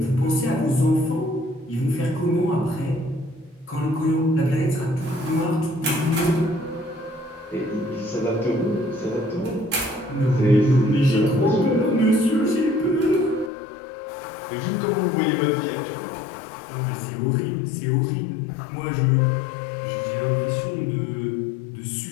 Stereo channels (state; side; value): drops out; right; at 13.5 s